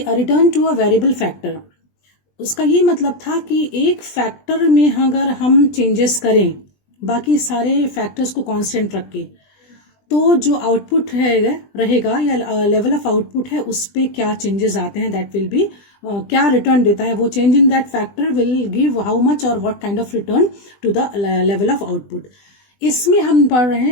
return to a variable factor, उसका ये मतलब था कि एक फैक्टर में अगर हम चेंजेस करें बाकी सारे फैक्टर्स को कांस्टेंट रख के, तो जो आउटपुट रहेगा या लेवल ऑफ आउटपुट है उस पर क्या चेंजेस आते हैं, दैट विल बी क्या रिटर्न देता है वो change in that factor will give how much और what kind of return to the level of output. इसमें हम पढ़ रहे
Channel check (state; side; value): late; right; 20 ms